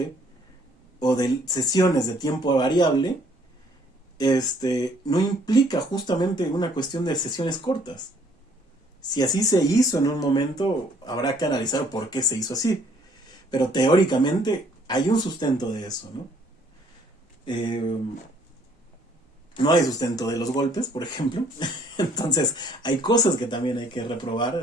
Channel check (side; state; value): both; normal; correlation 0.62